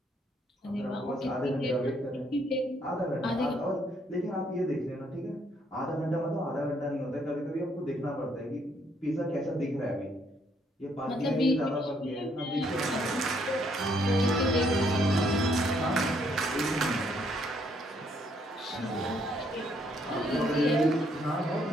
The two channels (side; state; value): both; normal; correlation 0.70